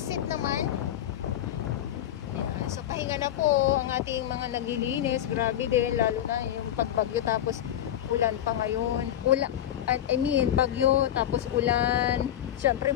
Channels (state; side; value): quieter; right; 11.5 dB